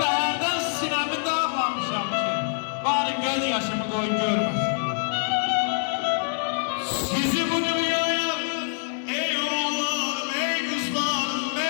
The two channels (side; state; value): right; silent; 62 dB below the other